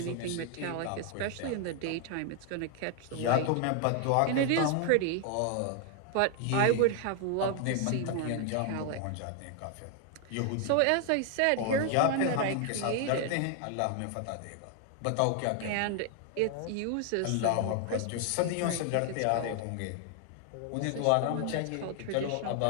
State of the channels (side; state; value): both; different; correlation 0.00